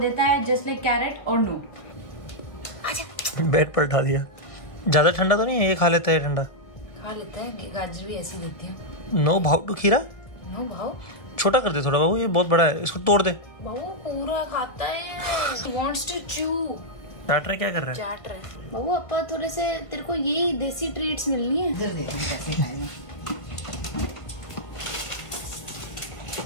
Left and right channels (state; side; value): late; right; 1.7 ms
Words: देता है जस्ट लाइक कैरेट और नो। बेड पर उठा दिया। ज्यादा ठंडा तो नहीं है, ये खा लेता है ठंडा? खा लेता है, गाजर भी ऐसी देती है। नो भाव टू खीरा? नो भाव। छोटा कर दे थोड़ा बाबू, ये बहुत बड़ा है, इसको तोड़ दे। बाबू पूरा खाता है। He wants to chew। चाट रहा है? क्या कर रहा है? चाट रहा है। बाबू अपा थोड़े से तेरे को यही देसी ट्रीट्स मिलनी है। जल्दी कैसे खाएगा।